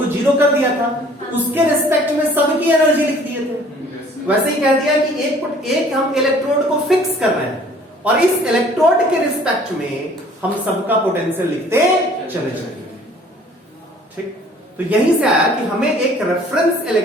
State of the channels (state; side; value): normal; both; correlation 0.54